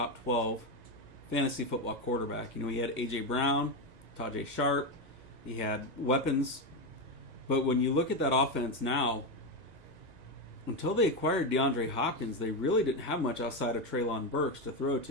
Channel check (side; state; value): left; late; 1.9 ms